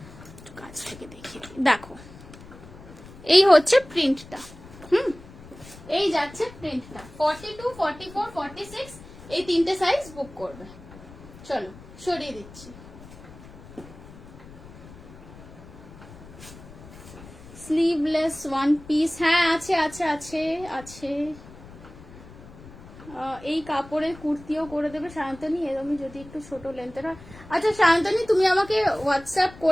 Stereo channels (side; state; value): left; noise; rumble, 18 dB below the sound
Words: কাছ থেকে দেখিয়ে দেখো, এই হচ্ছে প্রিন্টটা, এই যাচ্ছে প্রিন্টটা 42, 44, 46, এই তিনটে সাইজ বুক করবে। চলো সরিয়ে দিচ্ছি। স্লিভলেস ওয়ান পিস, হ্যাঁ আছে আছে আছে আছে। এই কাপড়ের কুর্তিও করে দেবে সায়ন্তনী, এরকমই যদি একটু ছোট লেন্থের হয়। আচ্ছা সায়ন্তনী তুমি আমাকে হোয়াটসঅ্যাপ